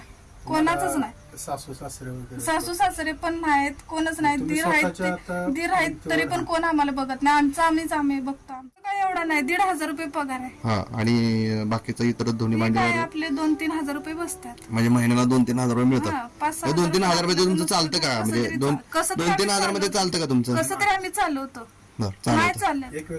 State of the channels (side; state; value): both; identical; correlation 1.00